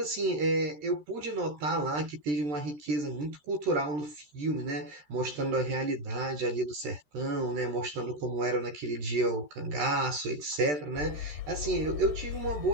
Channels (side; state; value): left; late; 13 ms